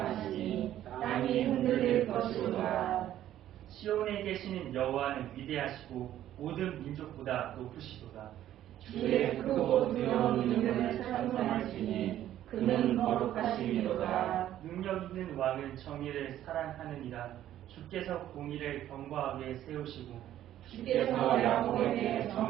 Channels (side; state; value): left; quieter; 12.3 dB